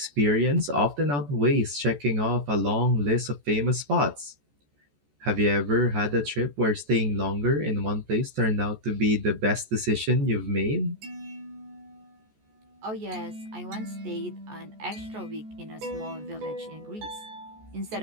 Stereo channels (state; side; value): late; left; 14 ms